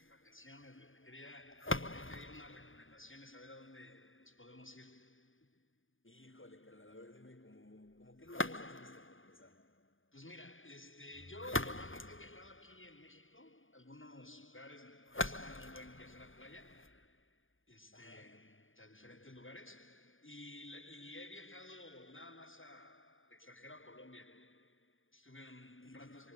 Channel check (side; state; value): right; late; 0.58 ms